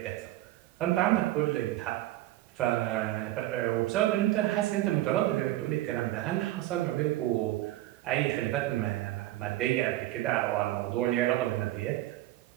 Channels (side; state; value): left; quieter; 15.9 dB